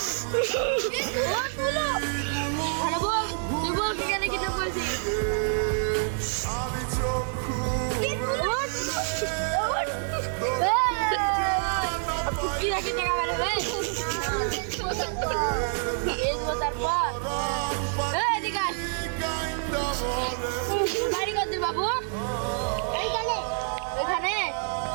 ভালো বল তুই বল কেন কিডন্যাপ করেছিস কি রাখি টাকা বেড়ে ভাই তারপর এদিকে বাড়ি করতে বাবু এইখানে এখানে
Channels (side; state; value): left; silent; 60 dB below the other